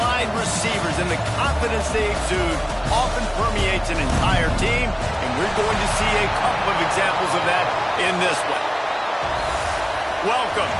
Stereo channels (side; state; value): both; identical; correlation 1.00